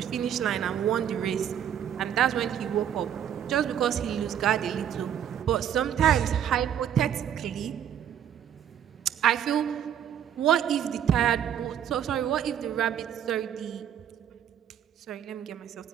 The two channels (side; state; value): left; quieter; 9.6 dB